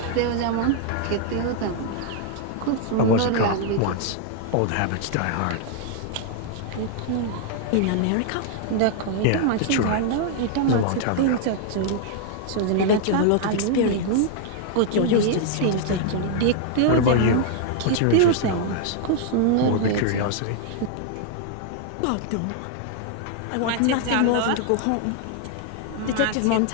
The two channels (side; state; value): both; different; correlation 0.00